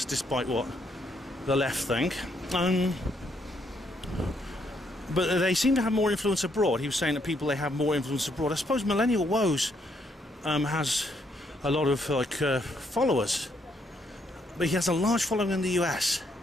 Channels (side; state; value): both; normal; correlation 0.73